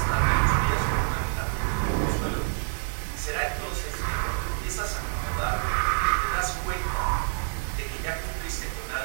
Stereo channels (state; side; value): silent; left; 60 dB below the other